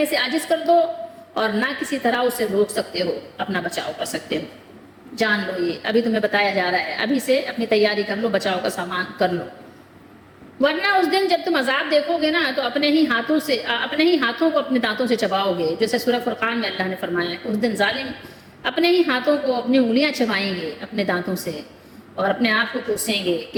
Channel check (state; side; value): identical; both; correlation 1.00